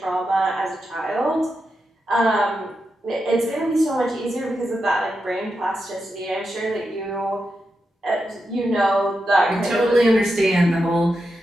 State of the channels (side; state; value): both; normal; correlation 0.87